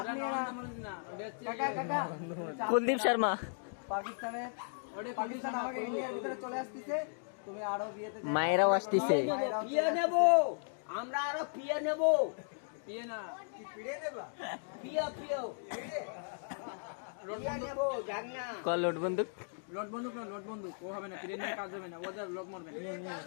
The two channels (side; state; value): right; silent; digital silence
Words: নিয়ে ना কাকা কাকা কুলদীপ শর্মা পাকিস্তানের পাকিস্তান আমাকে ইন্ডিয়ার ভিতরে চলে আসছে তুমি আরো বিয়েতে মায়েরাও আসতেছে পিয়ে নেব আমরা আরো পিয়ে নেব पिए ना পিয়ে পিয়ে পিয়ে নেব জান না কল লোড বন্দুক लोट बंदूक वो হবে না প্লেন में কাজ হবে না ওদের লোক মরবে